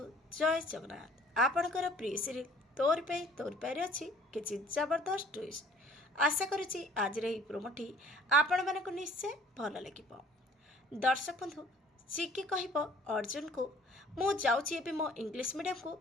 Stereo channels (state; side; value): normal; both; correlation 0.55